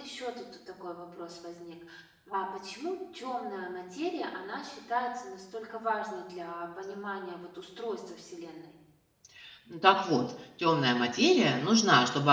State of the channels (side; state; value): both; identical; correlation 1.00